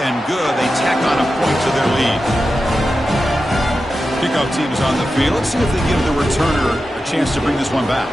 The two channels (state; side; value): normal; both; correlation 0.91